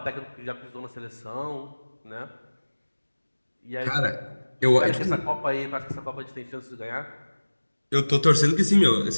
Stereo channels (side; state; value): both; inverted; correlation -1.00